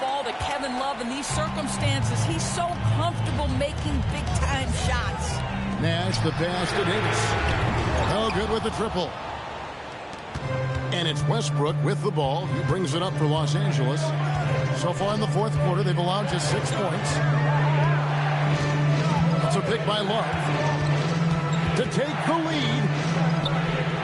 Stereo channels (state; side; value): identical; both; correlation 1.00